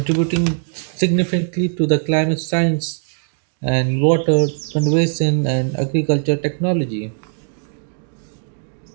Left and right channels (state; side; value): silent; left; digital silence